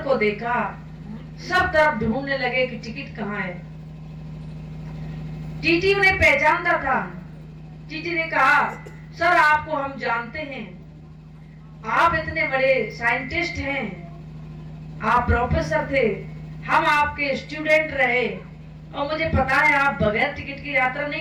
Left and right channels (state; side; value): identical; both; correlation 1.00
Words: को देखा, सब तरफ ढूंढने लगे कि टिकट कहाँ है। टीटी उन्हें पहचानता था। टीटी ने कहा, सर आपको हम जानते हैं, आप इतने बड़े साइंटिस्ट हैं, आप प्रोफेसर थे, हम आपके स्टूडेंट रहे और मुझे पता है आप बगैर टिकट की यात्रा